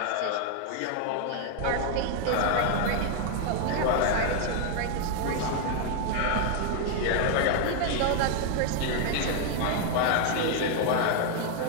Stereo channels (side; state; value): both; different; correlation 0.00